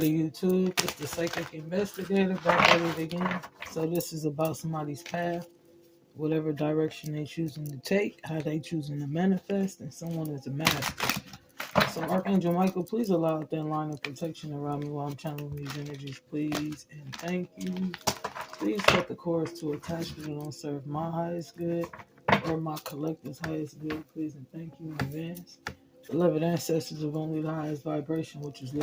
the YouTube? It's the Psychic Investigator back at it again. So this is about somebody's path, whatever direction they choosing to take, how they choosing to manifest, and someone is a master. So Archangel Michael, please allow a thin line of protection around me while I'm channeling these energies, please, and thank you. Please set the course to attachment that don't serve my highest good or my collective's highest good, please, and thank you in advance. Beloved ancestors of only the highest vibration, which is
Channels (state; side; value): identical; both; correlation 1.00